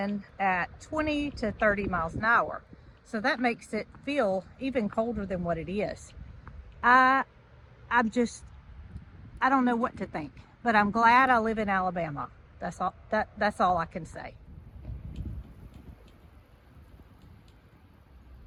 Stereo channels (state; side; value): identical; both; correlation 1.00